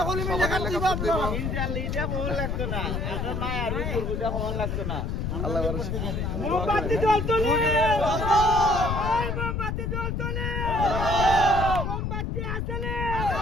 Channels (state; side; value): noise; left; rumble, 1 dB below the sound